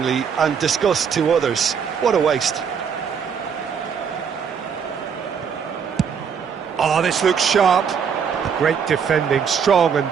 and disgust to others. What a waste. Oh, this looks sharp. Great defending, strong and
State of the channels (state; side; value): quieter; left; 6.9 dB